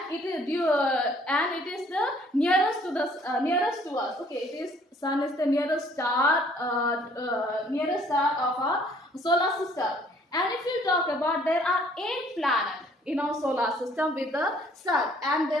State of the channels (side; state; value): both; normal; correlation 0.60